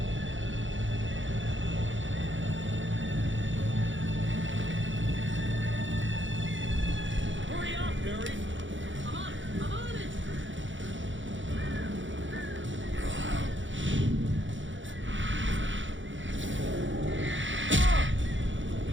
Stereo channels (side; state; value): left; late; 0.55 ms